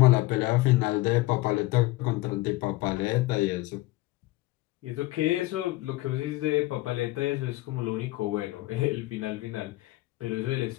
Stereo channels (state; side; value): quieter; right; 19.3 dB